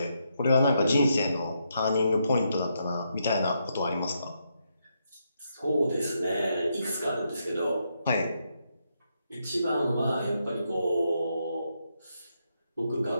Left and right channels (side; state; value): both; inverted; correlation -0.79